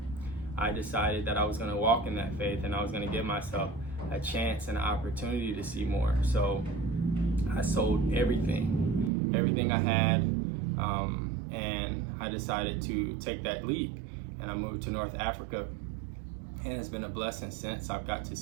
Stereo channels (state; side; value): drops out; left; at 9.1 s